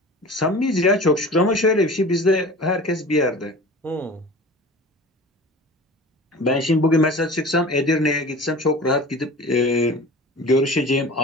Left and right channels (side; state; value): both; normal; correlation 0.39